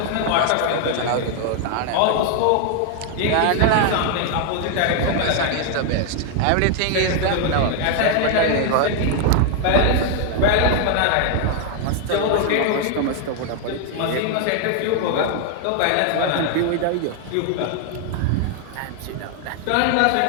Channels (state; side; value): different; both; correlation 0.00